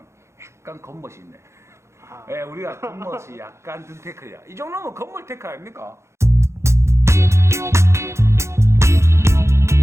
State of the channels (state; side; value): late; left; 0.13 ms